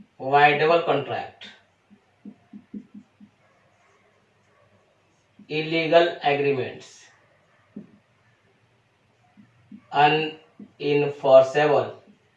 voidable contract, illegal agreements, unenforceable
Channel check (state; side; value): identical; both; correlation 1.00